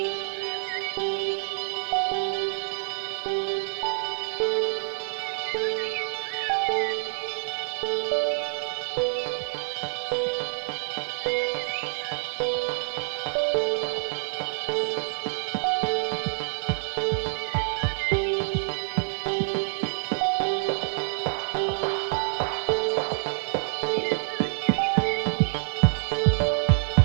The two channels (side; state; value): left; silent; digital silence